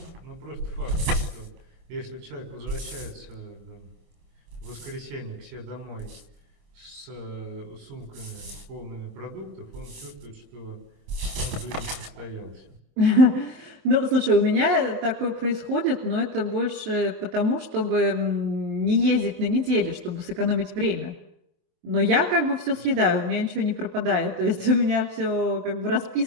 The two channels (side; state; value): left; late; 26 ms